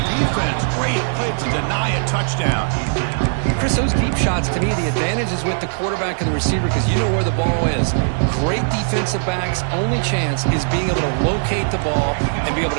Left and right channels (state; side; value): silent; left; digital silence